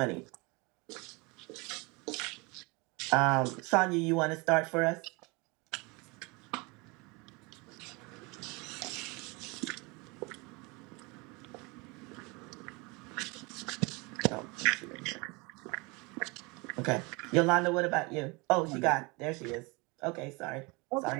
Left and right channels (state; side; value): quieter; left; 27.1 dB